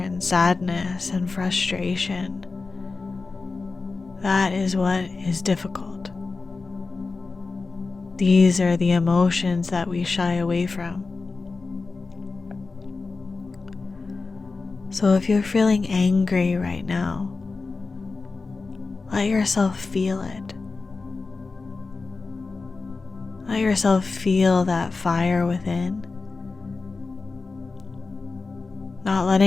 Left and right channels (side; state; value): right; quieter; 4.0 dB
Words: sadness and frustration, that is what is difficult. These are the emotions that we shy away from. So if you're feeling angry right now, let yourself feel it. Let yourself feel that fire within, not